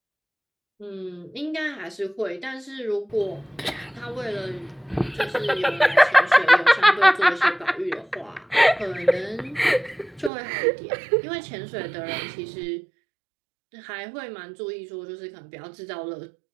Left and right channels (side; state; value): left; drops out; at 10.3 s